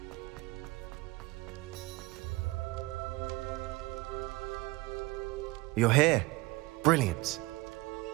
You're here. Brilliant.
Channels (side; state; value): left; quieter; 22.5 dB